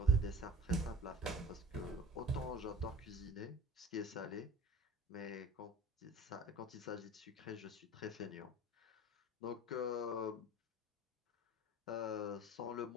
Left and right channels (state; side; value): normal; both; correlation 0.41